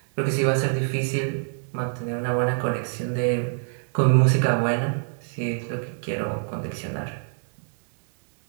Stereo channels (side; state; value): left; silent; digital silence